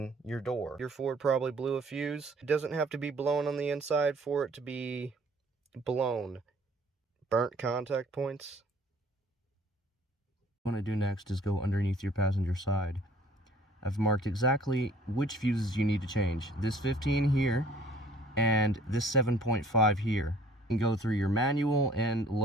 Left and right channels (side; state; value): both; normal; correlation 0.55